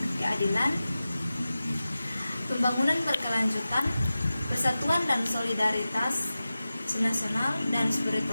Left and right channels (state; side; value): inverted; both; correlation -0.94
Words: keadilan, pembangunan berkelanjutan, persatuan dan solidaritas nasional, dan